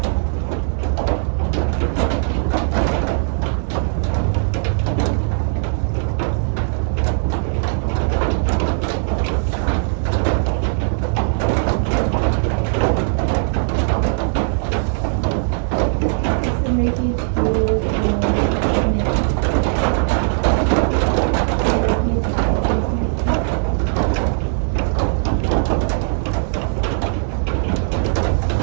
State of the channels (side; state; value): left; silent; digital silence